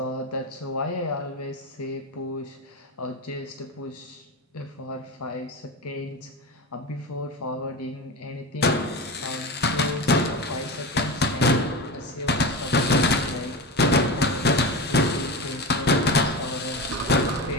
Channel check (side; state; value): both; normal; correlation 0.23